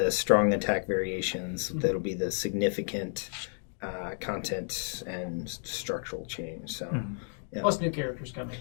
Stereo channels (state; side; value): silent; right; 57 dB below the other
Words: strong attack variations. That'll be the significant content and structural change. So. Yeah. Plus new characters coming.